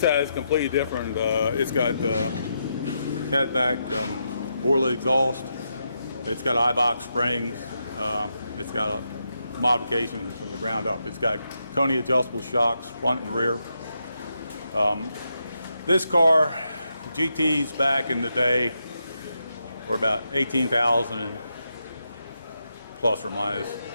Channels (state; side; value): inverted; both; correlation -0.83